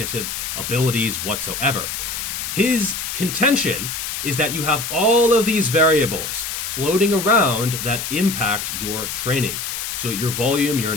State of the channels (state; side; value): noise; left; hiss, 5 dB below the sound